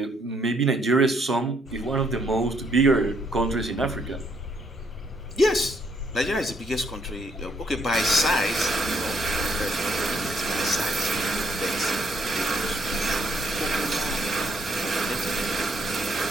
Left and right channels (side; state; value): both; normal; correlation 0.70